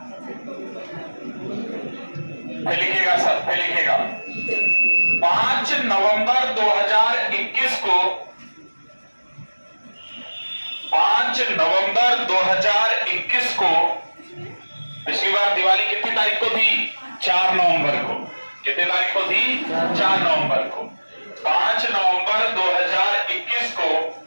फिर लिखिएगा सर, फिर लिखिएगा, 5 नवंबर 2021 को, 5 नवंबर 2021 को, पिछली बार दिवाली कितनी तारीख को थी? 4 नवंबर को। कितनी तारीख को थी? 4 नवंबर को। 5 नवंबर 2021 को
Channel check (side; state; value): both; inverted; correlation -1.00